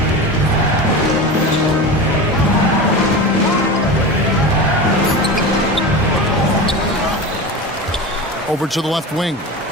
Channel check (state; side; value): normal; both; correlation 0.27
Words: Over to the left wing.